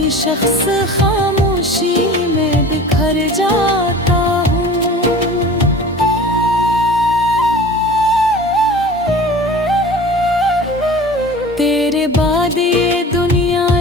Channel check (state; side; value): normal; both; correlation 0.40